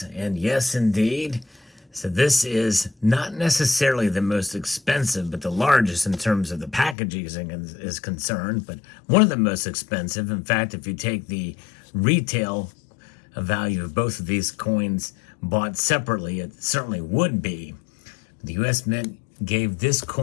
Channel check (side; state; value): right; drops out; at 7.0 s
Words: And yes, indeed. So this is not necessarily the most expensive, but the largest in terms of the packaging is concerned, but one of the most expensive. In fact, if you take the retail value of both of these coins bought separately, it certainly would be. The U.S. Mint gave this